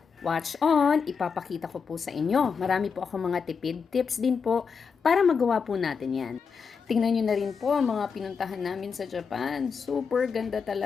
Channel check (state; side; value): quieter; right; 5.8 dB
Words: Watch on! Ipapakita ko po sa inyo. Marami po akong mga tipid tips din po para magawa po natin yan. Tingnan nyo na rin po ang mga pinuntahan namin sa Japan. Super ganda